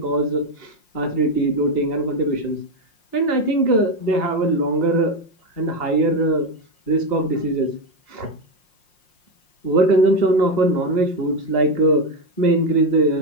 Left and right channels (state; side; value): late; right; 5.6 ms